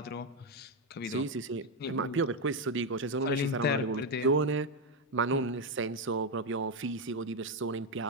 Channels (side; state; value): both; normal; correlation 0.05